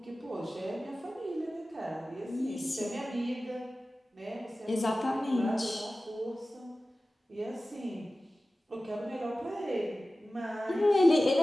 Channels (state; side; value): normal; both; correlation 0.96